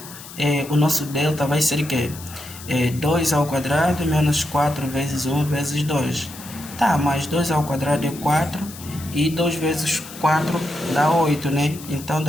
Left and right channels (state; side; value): noise; left; hiss, 15 dB below the sound